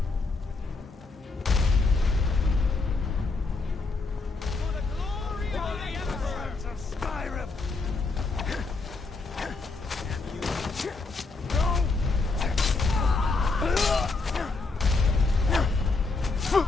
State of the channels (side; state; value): right; quieter; 3.9 dB